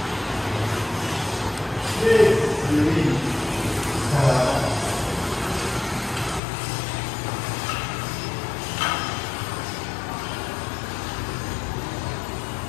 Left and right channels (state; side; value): drops out; right; at 6.4 s